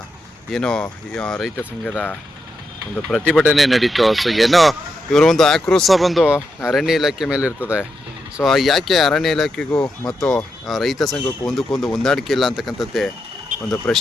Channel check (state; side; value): normal; both; correlation 0.84